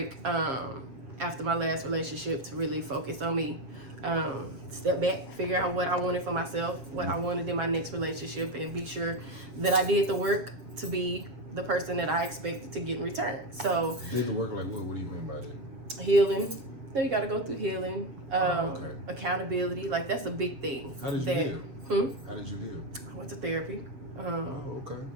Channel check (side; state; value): left; late; 7.3 ms